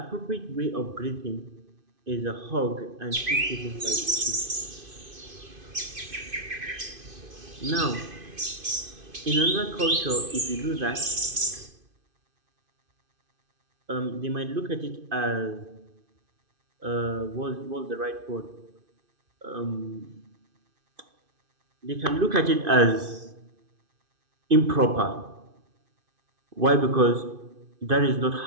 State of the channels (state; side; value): late; left; 2.5 ms